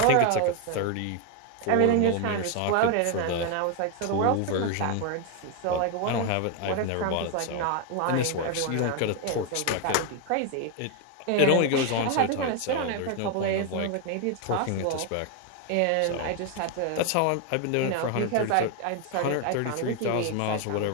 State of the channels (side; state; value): both; different; correlation 0.01